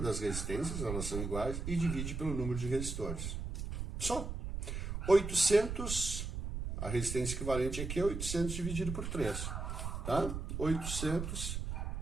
resistências, elas são iguais, e divide pelo número de resistores. Só. 800, a resistência equivalente aqui é 800 dividido por 3. Tá? 800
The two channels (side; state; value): right; noise; rumble, 4 dB below the sound